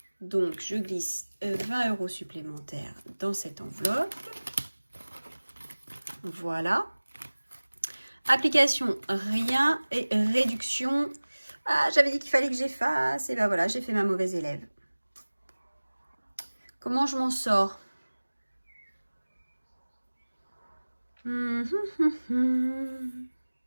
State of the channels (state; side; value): inverted; both; correlation -1.00